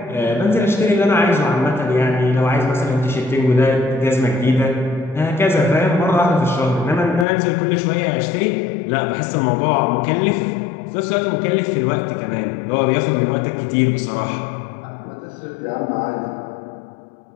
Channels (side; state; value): right; drops out; at 7.2 s